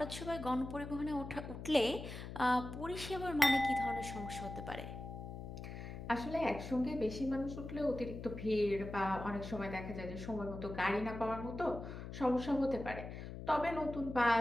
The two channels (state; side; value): noise; left; hum, 9 dB below the sound